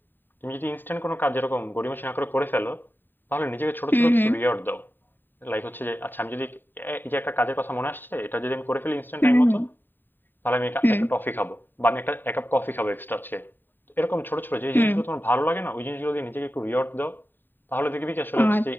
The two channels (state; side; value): late; right; 0.093 ms